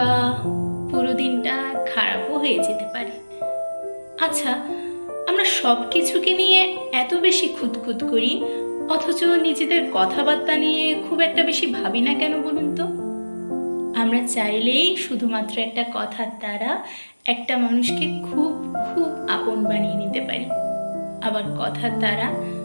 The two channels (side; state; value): both; inverted; correlation -1.00